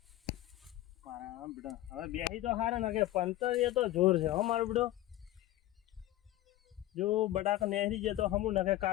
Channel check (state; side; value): quieter; right; 15.3 dB